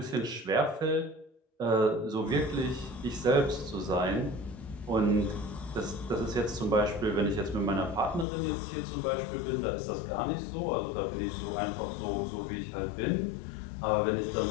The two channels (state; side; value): drops out; right; at 8.2 s